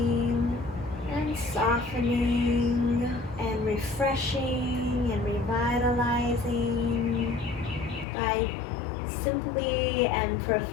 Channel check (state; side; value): drops out; right; at 8.1 s